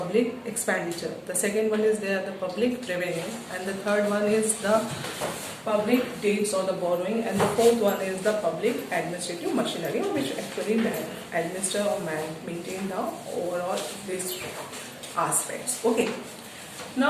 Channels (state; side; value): identical; both; correlation 1.00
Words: expenditure, the second one is there the public revenue, and the third one is the public debts or the borrowing, and the fourth one is the public administrative machinery, which actually administer or maintain the overall these aspects. Okay.